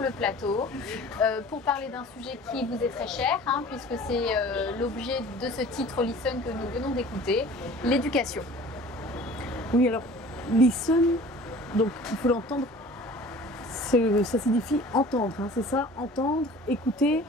plateau pour parler d'un sujet qui vous est très cher, puisque c'est l'objet de ce titre Listen que nous venons d'écouter, l'éducation. Oui, alors listen, donc il faut l'entendre, ça signifie entendre, c'est ça, entendre, écouter.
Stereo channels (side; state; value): both; normal; correlation 0.45